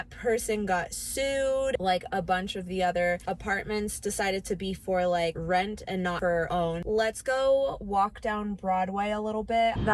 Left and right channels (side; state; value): both; identical; correlation 1.00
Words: person got sued. Like a bunch of the other apartments decided to be for like rent and not for own. Let's go walk down Broadway a little bit.